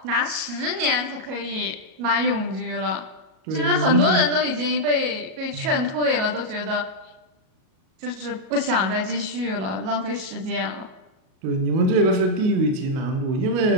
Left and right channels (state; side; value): late; left; 37 ms